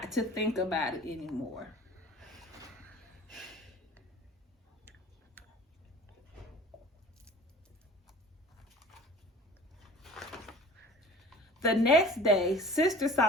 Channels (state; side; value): normal; both; correlation 0.44